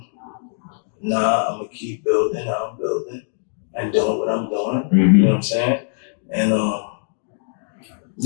nah, I'm going to keep building how I'm building and doing what I'm doing. You know what I'm saying? And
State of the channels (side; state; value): right; silent; digital silence